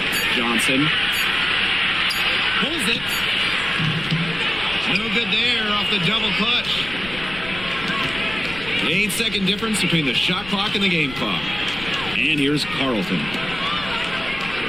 Johnson pulls it. No good there off the double clutch. 8-second difference between the shot clock and the game clock. And here's Carlton.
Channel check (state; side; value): noise; left; rumble, 14 dB below the sound